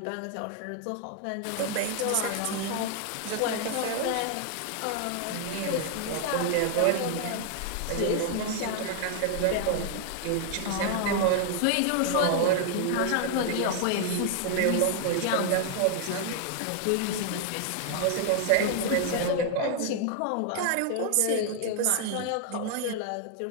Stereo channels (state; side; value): different; both; correlation 0.00